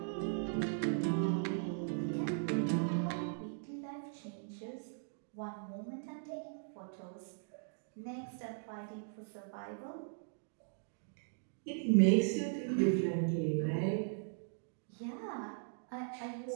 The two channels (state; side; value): silent; left; digital silence